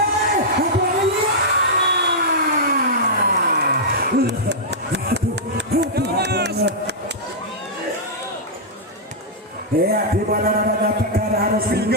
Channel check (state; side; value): normal; both; correlation -0.10